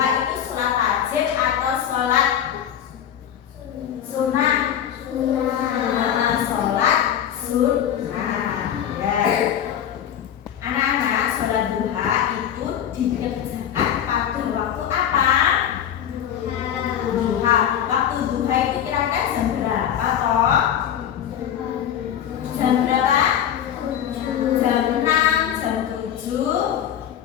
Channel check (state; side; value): quieter; right; 9.8 dB